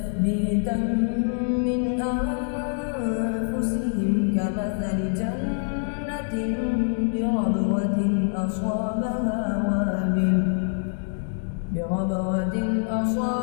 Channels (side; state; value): right; silent; digital silence